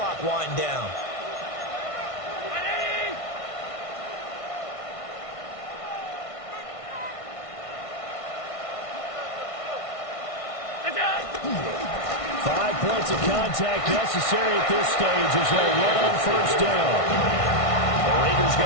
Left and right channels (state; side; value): late; right; 1.6 ms